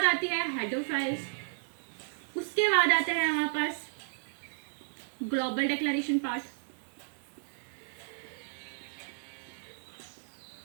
आती है हेडर फाइल्स, उसके बाद आता है हमारे पास ग्लोबल डिक्लेरेशन पार्ट।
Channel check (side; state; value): left; silent; digital silence